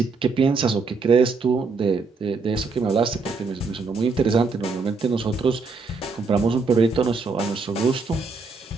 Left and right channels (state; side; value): quieter; left; 4.3 dB